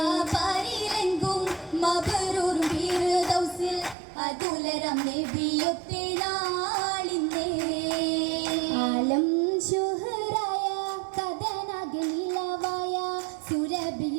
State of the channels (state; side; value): drops out; left; at 4.0 s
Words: പാരിലെങ്കും മബറൂറും ഫിർദൗസിൽ അതുലരം നബിയൊത്തെ നാളിനെ ആലം ശുഹറായ കഥനാകെ നിലവായ